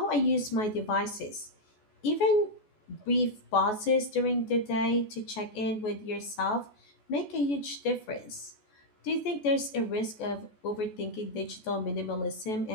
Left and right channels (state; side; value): late; right; 14 ms